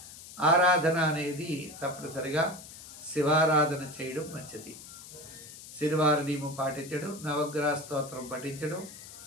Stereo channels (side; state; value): left; noise; hiss, 15 dB below the sound